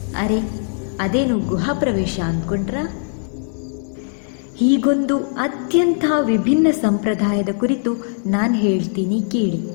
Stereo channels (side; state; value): right; silent; 66 dB below the other